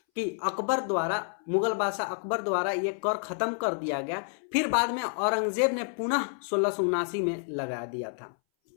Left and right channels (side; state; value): right; silent; 58 dB below the other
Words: कि मुगल बादशाह अकबर द्वारा ये कर खत्म कर दिया गया। फिर बाद में औरंगजेब ने पुनः 1679 में लगा दिया था